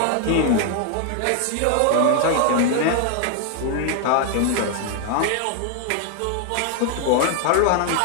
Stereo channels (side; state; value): both; different; correlation 0.00